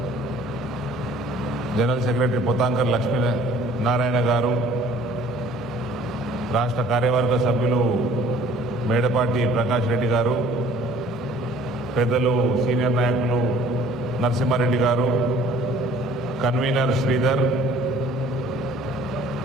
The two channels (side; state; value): both; normal; correlation 0.53